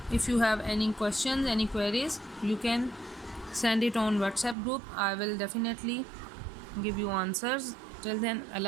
if you have any questions, any queries, you can send it on WhatsApp group. I will definitely give you answers. Till then,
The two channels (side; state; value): left; drops out; at 4.5 s